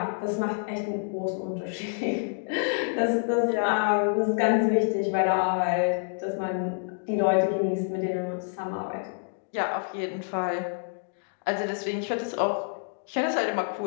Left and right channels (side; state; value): right; silent; digital silence